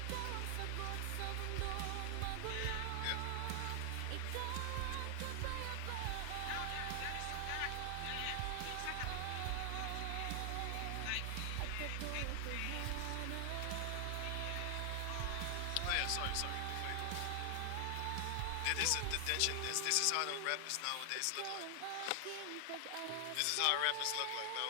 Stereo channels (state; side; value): different; both; correlation 0.00